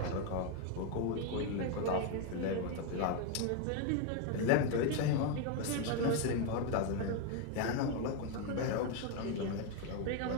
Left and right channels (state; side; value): different; both; correlation 0.01